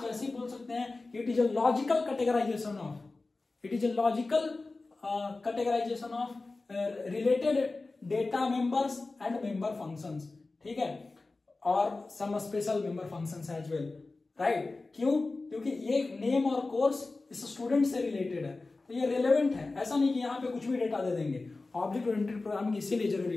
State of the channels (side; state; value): right; quieter; 3.5 dB